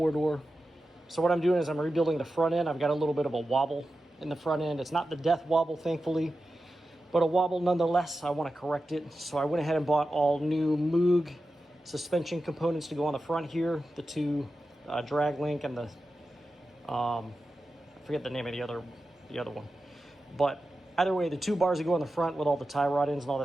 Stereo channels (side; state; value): both; normal; correlation 0.92